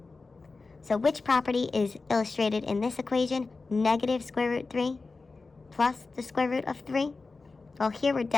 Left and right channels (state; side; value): quieter; right; 3.9 dB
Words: So which property is illustrated in this equation? Negative square root 3 plus the square root of 3. Well, here we're